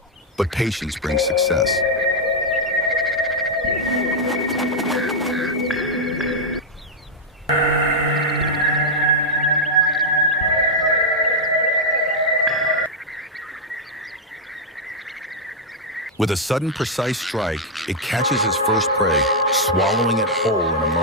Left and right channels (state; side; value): normal; both; correlation -0.03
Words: But patience brings success. With a sudden, precise strike, it catches its first prey, swallowing it whole in a